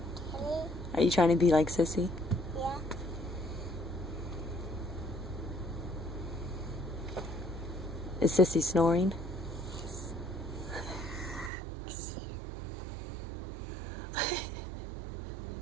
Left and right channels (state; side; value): drops out; left; at 11.5 s